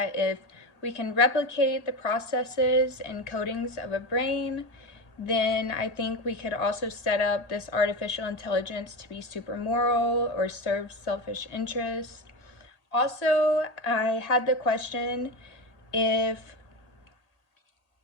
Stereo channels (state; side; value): late; right; 1.8 ms